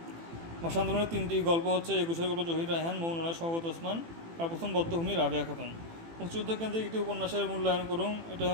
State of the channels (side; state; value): left; late; 18 ms